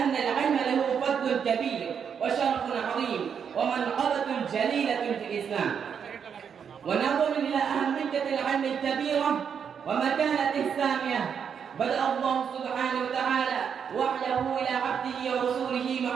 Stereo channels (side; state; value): left; quieter; 7.3 dB